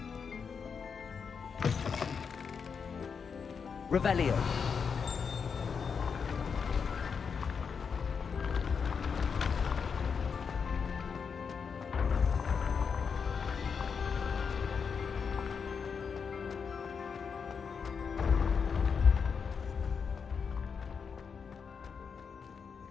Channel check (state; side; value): quieter; right; 6.1 dB